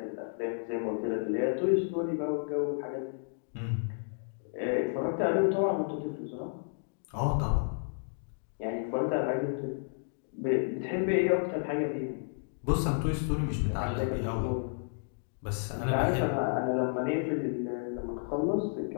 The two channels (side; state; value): right; silent; digital silence